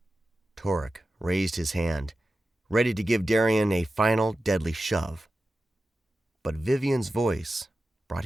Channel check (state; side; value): normal; both; correlation 0.93